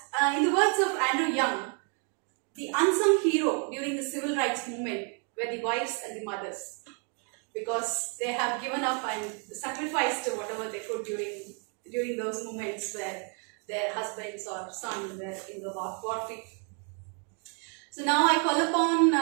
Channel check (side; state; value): left; quieter; 39.1 dB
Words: in the words of Andrew Young, the unsung hero during the civil rights movement were the wives and the mothers, because they have given up and sacrificed whatever they could during those moments where their husbands or sons were in the warfare. So now I call upon